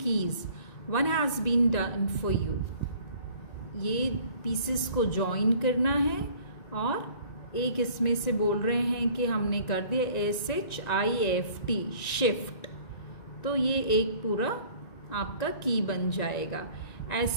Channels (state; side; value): late; right; 1.9 ms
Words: keys, one has been done for you. ये पीसेस को ज्वाइन करना है और एक इसमें से बोल रहे हैं कि हमने कर दिया SHIFT शिफ्ट, तो ये एक पूरा आपका की बन जाएगा।